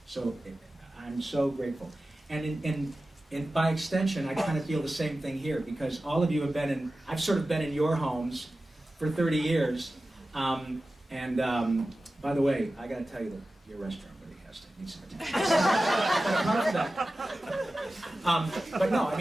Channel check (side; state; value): both; normal; correlation 0.95